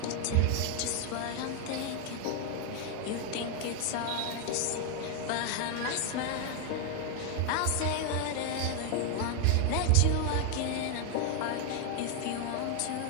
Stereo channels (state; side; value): different; both; correlation 0.01